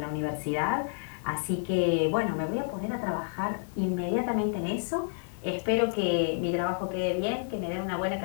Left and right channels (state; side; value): silent; right; digital silence